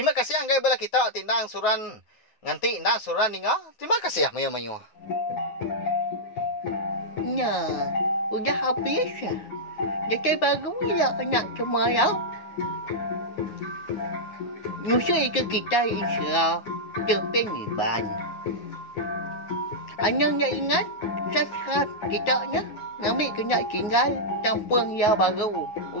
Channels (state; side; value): late; right; 9.5 ms